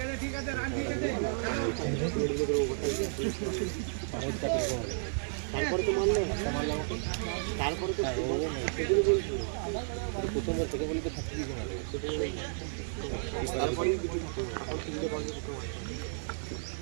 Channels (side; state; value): left; silent; digital silence